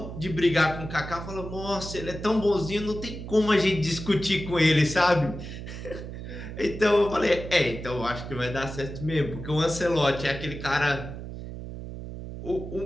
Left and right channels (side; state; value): right; noise; hum, 9 dB below the sound